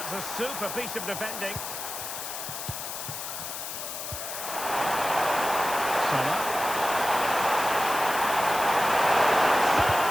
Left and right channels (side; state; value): left; noise; hiss, 7 dB below the sound